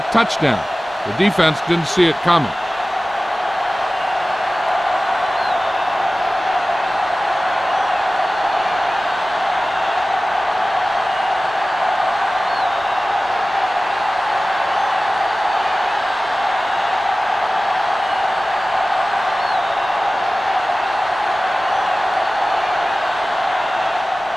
touchdown. The defense didn't see it coming.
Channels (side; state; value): both; normal; correlation 0.97